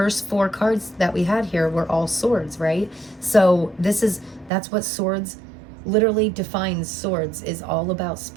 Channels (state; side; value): drops out; left; at 4.5 s